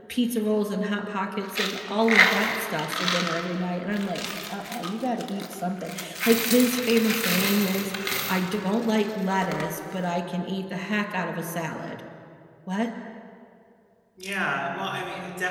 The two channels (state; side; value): identical; both; correlation 1.00